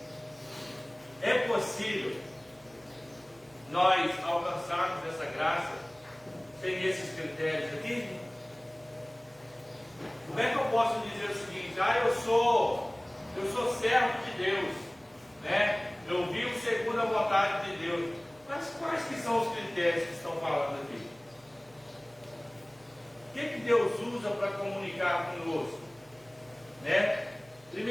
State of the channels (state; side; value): noise; right; hum, 30 dB below the sound